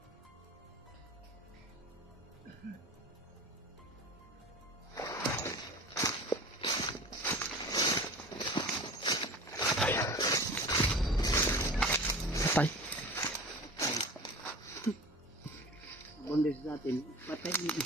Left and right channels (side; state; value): both; normal; correlation 0.37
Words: Patay. Bondes natin. Patay dito.